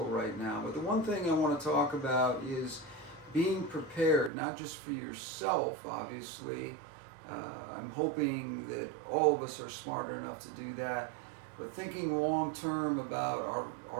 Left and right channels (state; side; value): drops out; left; at 4.3 s